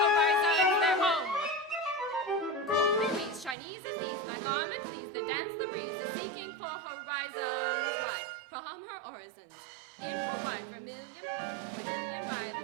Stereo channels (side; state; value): left; drops out; at 3.6 s